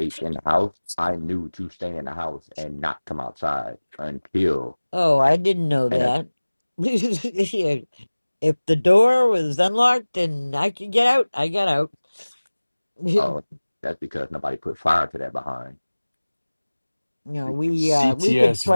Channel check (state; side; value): inverted; both; correlation -1.00